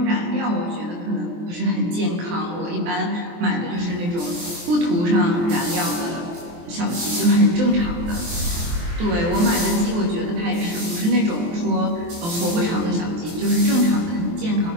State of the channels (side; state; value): left; late; 23 ms